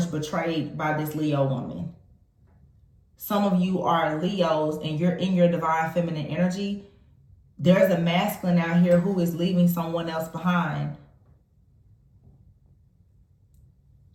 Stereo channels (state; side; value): identical; both; correlation 1.00